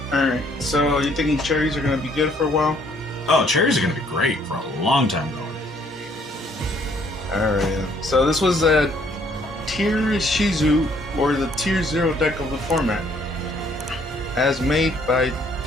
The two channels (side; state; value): both; normal; correlation 0.64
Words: Alright, so you thinking cherries are going to be good for a while? Oh, cherries are going to be great for a long time going. Alright, so this was a tier Ishizu, or the tier 0 deck of the format, as made by